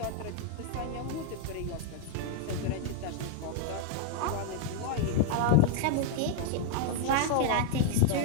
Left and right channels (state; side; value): different; both; correlation 0.00